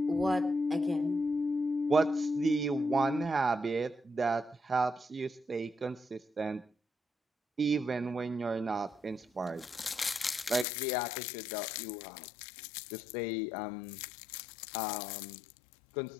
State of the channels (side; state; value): right; drops out; at 10.7 s